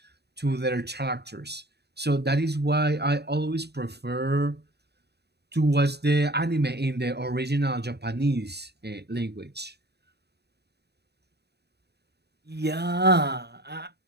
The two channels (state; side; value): late; left; 0.48 ms